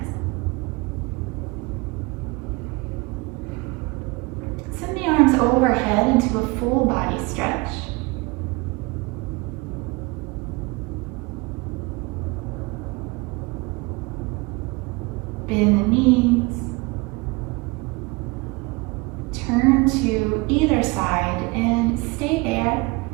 Send the arms overhead into a full body stretch. Bend the knees. Turn to either side and stay there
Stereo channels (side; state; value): left; quieter; 25.2 dB